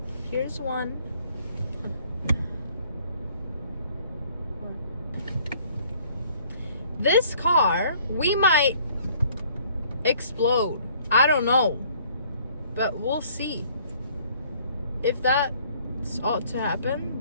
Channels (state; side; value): inverted; both; correlation -0.59